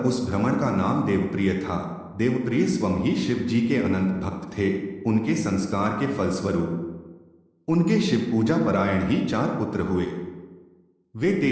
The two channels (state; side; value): identical; both; correlation 1.00